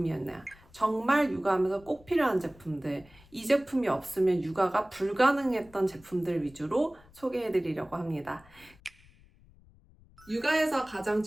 정말 육아하면서 꼭 필요한 제품들, 이 제품이 없으면 육아가 불가능했던 제품들 위주로 소개해드리려고 합니다. 육아에서 가장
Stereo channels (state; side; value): noise; left; rumble, 26 dB below the sound